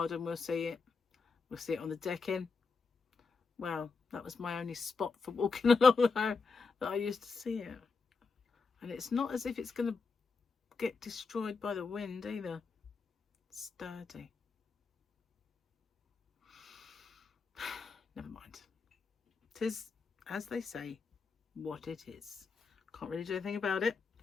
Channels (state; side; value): quieter; right; 4.7 dB